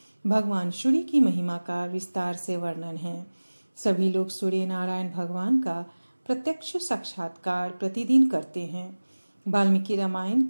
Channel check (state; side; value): inverted; both; correlation -1.00